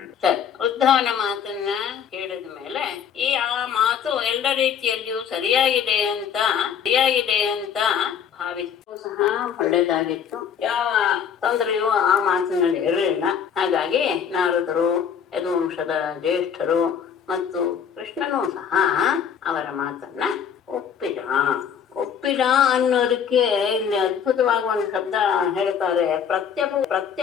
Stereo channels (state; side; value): quieter; right; 7.8 dB